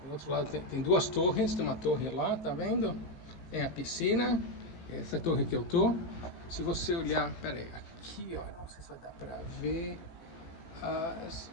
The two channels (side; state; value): right; late; 18 ms